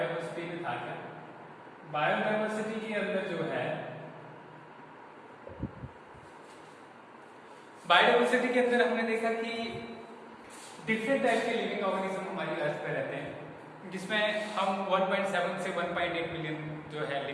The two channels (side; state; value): both; identical; correlation 1.00